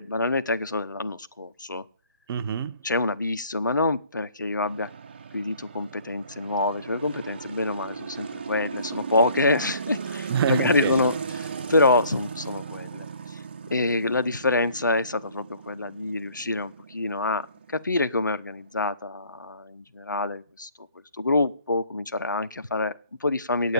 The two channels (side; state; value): both; inverted; correlation -0.57